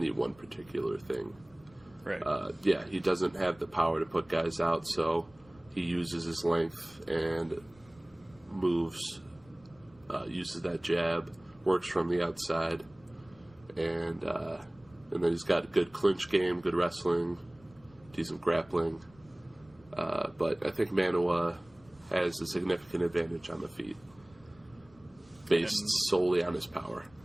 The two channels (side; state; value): left; noise; rumble, 27 dB below the sound